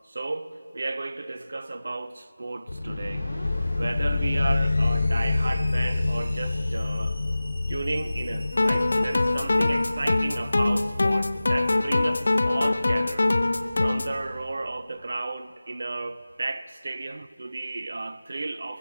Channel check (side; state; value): both; inverted; correlation -0.97